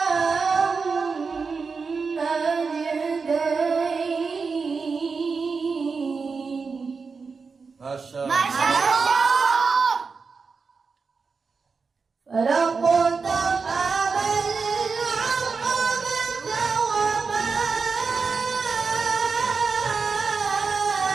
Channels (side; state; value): left; quieter; 4.9 dB